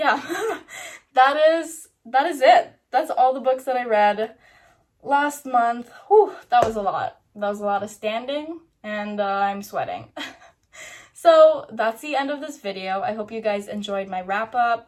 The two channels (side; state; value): both; identical; correlation 1.00